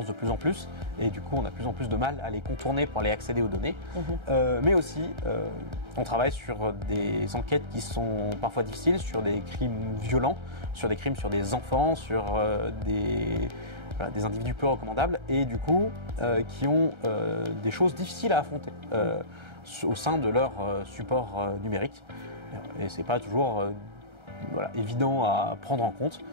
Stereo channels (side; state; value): left; late; 1.3 ms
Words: de plus en plus et du coup on a de plus en plus de mal à les contourner pour aller accéder aux données. Mais aussi, on travaille sur des enquêtes qui sont parfois difficiles, sur des crimes violents, sur des crimes sur des enfants, sur des individus peu recommandables et du coup qui ont des choses difficiles à affronter au sein de leur support numérique. Et c'est pas toujours évident à prendre en compte,